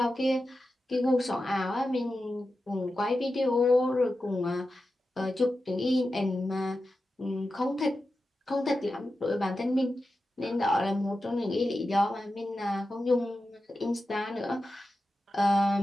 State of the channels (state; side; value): normal; both; correlation 0.91